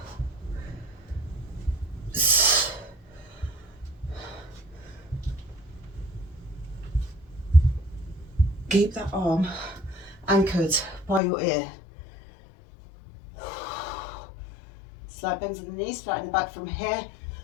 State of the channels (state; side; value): drops out; right; at 11.2 s